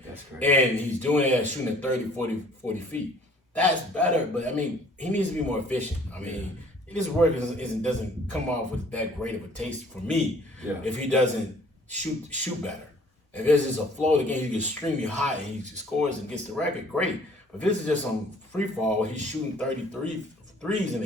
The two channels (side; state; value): both; normal; correlation 0.55